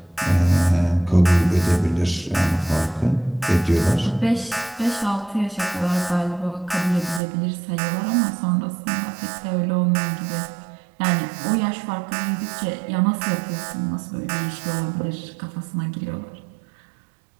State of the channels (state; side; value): drops out; left; at 7.2 s